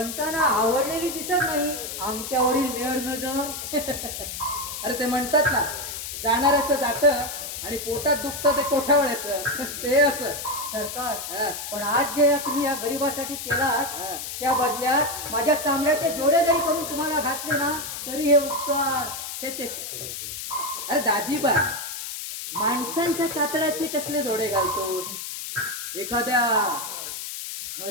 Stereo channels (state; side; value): noise; left; hiss, 7 dB below the sound